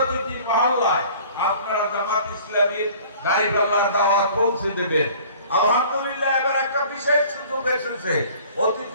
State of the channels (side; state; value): both; inverted; correlation -0.49